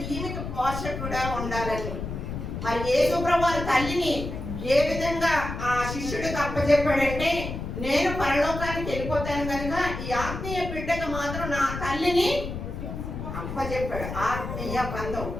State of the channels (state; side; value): noise; left; rumble, 6 dB below the sound